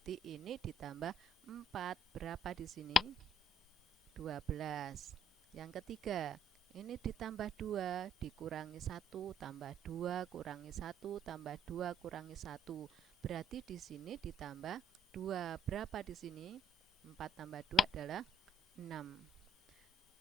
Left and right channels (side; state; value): both; normal; correlation 0.68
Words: ini ditambah 4. Berapa di sini? 12. Yang ketiga, ini ditambah 2, dikurangi 1, tambah 2, kurangi 1, tambah 2, kurangi 1. Berarti di sini ditambah 2. Berapa di sini? 4 tambah 2 adalah 6.